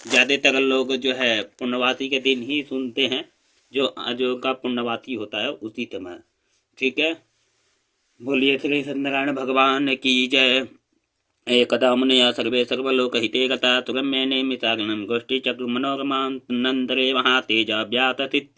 ज़्यादातर लोग जो है पूर्णवासी के दिन ही सुनते हैं, जो का पूर्णवासी होता है उसी समय। ठीक है। बोलिए श्री सत्यनारायण भगवान की जय। एकदा मुनयः सर्वे सर्वलोकहिते गता तुरम्येने मिताग्नं गोष्ठीचक्रमनोरमान्तरे महातेजा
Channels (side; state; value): both; identical; correlation 1.00